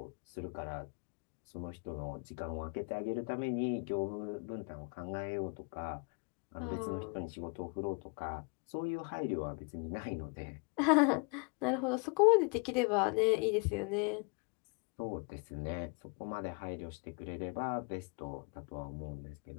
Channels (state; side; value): quieter; right; 33.3 dB